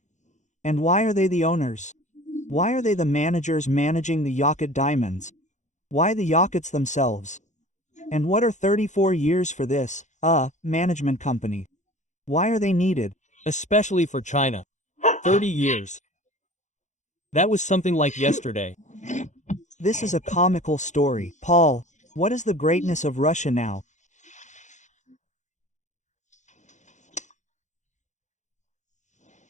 And why are they the owners? Why are they the managers managing the Yakut diamonds? Why the Yakuts themselves? And what are 34 years for this, management company? Why are they needed? Especially for China. 30 years. That was something like yesterday. This is a comical story. Paul, what is the greatness of Russia now?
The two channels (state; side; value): late; right; 0.35 ms